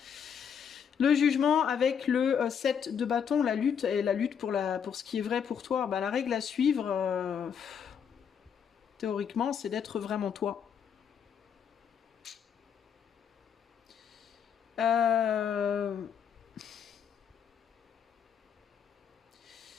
Le jugement avec le 7 de bâton, la lutte, et la lutte pour ce qui est vrai pour toi. Bah, la règle à suivre, théoriquement, c'est d'être vraiment toi.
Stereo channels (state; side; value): quieter; right; 7.6 dB